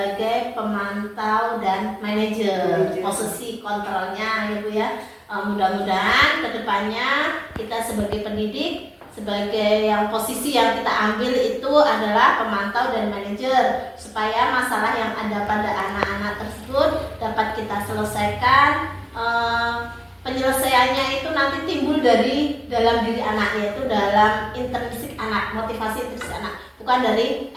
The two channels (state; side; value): identical; both; correlation 1.00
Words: pemantau dan manajer, posisi kontrolnya ya Bu ya. Mudah-mudahan kedepannya kita sebagai pendidik, sebagai yang posisi yang kita ambil itu adalah pemantau dan manajer, supaya masalah yang ada pada anak-anak tersebut dapat kita selesaikan. Penyelesaiannya itu nanti timbul dari dalam diri anak, yaitu dalam intrinsik anak, motivasi intrinsik anak, bukan dari